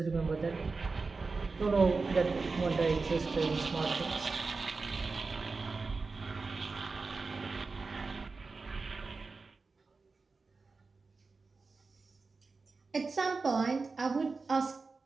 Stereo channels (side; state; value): left; quieter; 4.1 dB